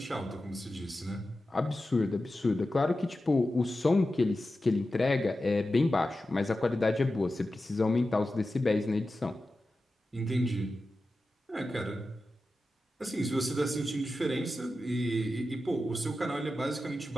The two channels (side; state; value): both; normal; correlation 0.93